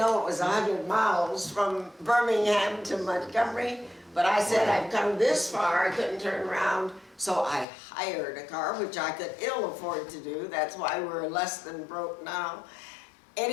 it was 100 miles from Birmingham to Montgomery, but I said, I've come this far, I couldn't turn around, so I hired a car, which I could ill afford to do. That's why we're less than broke now.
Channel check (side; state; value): right; drops out; at 7.7 s